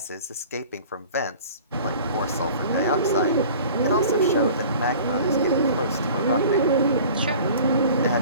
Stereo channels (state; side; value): inverted; both; correlation -0.45